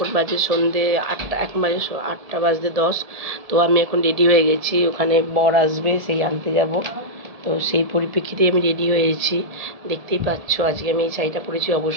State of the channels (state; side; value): late; left; 1.7 ms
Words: বাজে সন্ধে 8টা, এখন বাজে 8টা বাজতে 10। তো আমি এখন রেডি হয়ে গেছি, ওখানে বর আসবে, সেই আনতে যাব। তো সেই পরিপ্রেক্ষিতে আমি রেডি হয়েছি, দেখতেই পাচ্ছ। আজকে আমি এই শাড়িটা পরেছি,